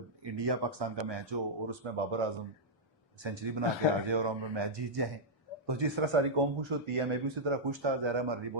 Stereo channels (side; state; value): both; normal; correlation -0.07